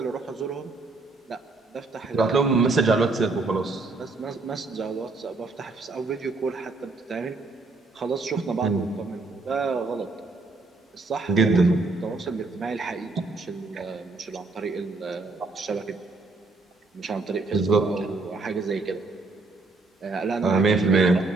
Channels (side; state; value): left; quieter; 3.5 dB